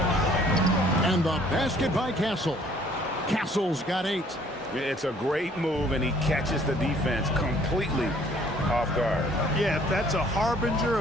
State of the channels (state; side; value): normal; both; correlation 0.58